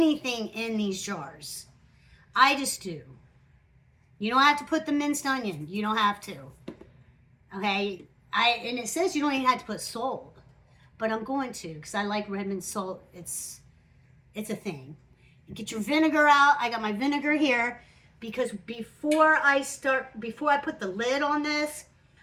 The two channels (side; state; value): both; identical; correlation 1.00